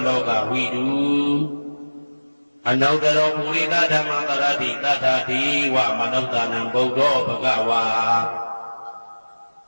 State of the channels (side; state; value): both; inverted; correlation -1.00